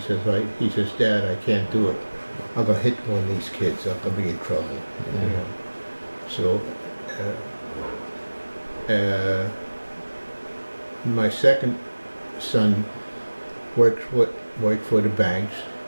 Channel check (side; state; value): both; inverted; correlation -1.00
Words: Dad, I can't do it. I'm gonna hit one of these kids. I'm gonna be in trouble. You know. So my second son worked for the banks.